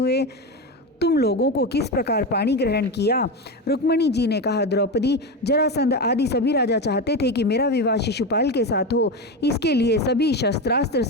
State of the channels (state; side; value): normal; both; correlation 0.18